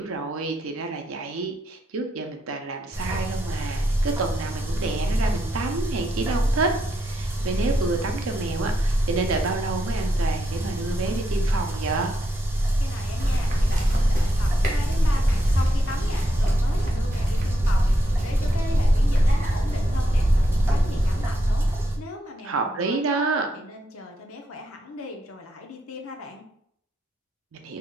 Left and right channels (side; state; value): both; normal; correlation 0.80